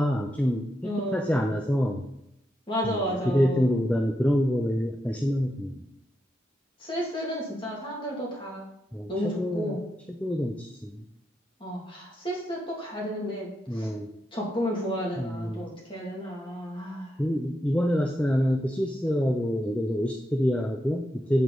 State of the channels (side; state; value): both; normal; correlation 0.84